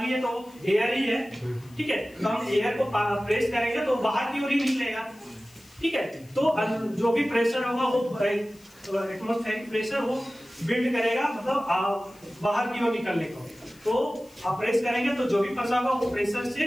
है तो एयर ही है। ठीक है, तो हम एयर को प्रेस करेंगे तो बाहर की ओर ही निकलेगा। ठीक है, तो जो भी प्रेशर होगा वो एटमॉस्फेरिक प्रेशर वो बिल्ड करेगा, मतलब बाहर की ओर निकलने को। तो आप प्रेस करेंगे तो जो भी फंसा होगा वो प्रेशर से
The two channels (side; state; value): left; noise; hiss, 27 dB below the sound